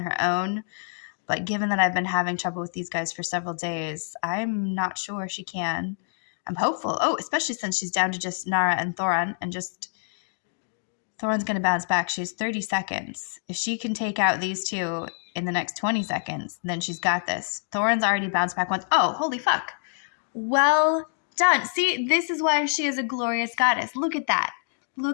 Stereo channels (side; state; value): right; silent; digital silence